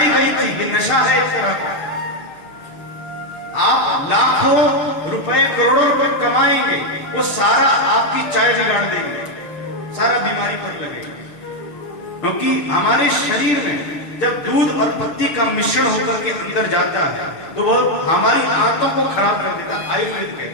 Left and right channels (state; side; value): late; right; 6.5 ms